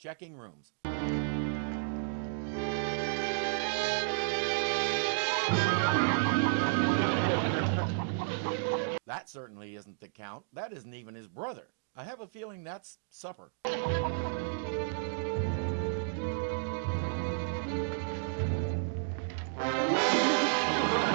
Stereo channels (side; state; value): left; silent; digital silence